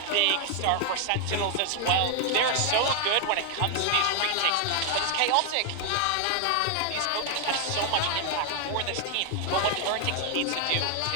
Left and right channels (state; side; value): different; both; correlation 0.00